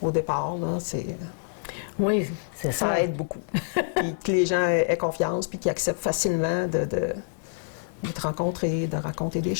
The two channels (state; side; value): silent; right; digital silence